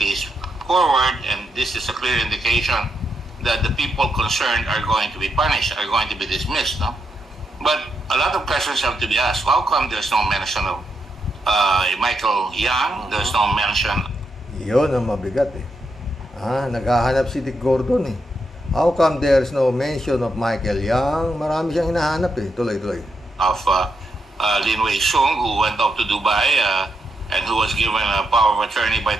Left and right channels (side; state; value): both; normal; correlation 0.82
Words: case forward, and this is a clear indication that the people concerned are going to be punished, are going to be dismissed, no? But a lot of questions have to be asked. How come there's no mention of Michael Yang? There's no mention. Yun ang mabigat naghahanap si Dick Gordon How come there's no mention of Michael Yang? Marami siyang hinahanap tuloy-tuloy. Of Lin Wei Shung, who went off to Dubai and who was given a power of attorney by